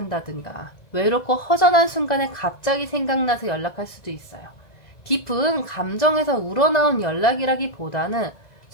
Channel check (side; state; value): right; late; 2.0 ms